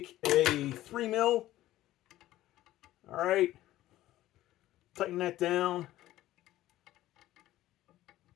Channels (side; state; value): right; quieter; 15.0 dB